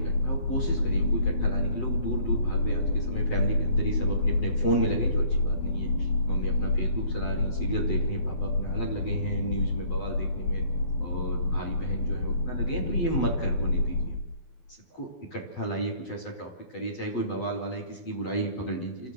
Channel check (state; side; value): late; right; 12 ms